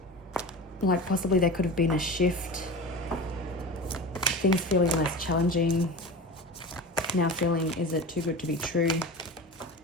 like possibly there could have been a shift, things feeling less challenging, now feeling, is it too good to be true?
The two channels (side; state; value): both; normal; correlation 0.31